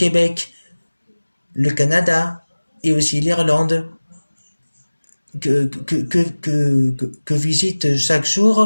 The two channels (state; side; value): inverted; both; correlation -1.00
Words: le Canada et aussi l'Irlande, que visitent chaque